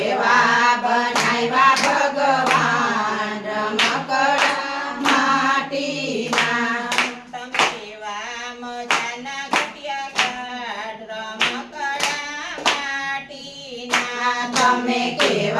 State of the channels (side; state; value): both; identical; correlation 1.00